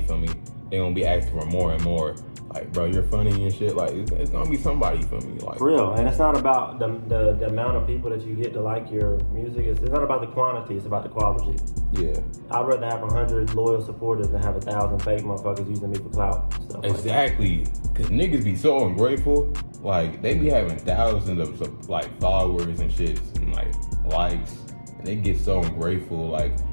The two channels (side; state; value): both; inverted; correlation -1.00